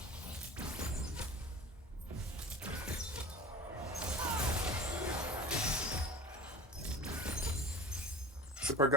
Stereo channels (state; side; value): normal; both; correlation 0.38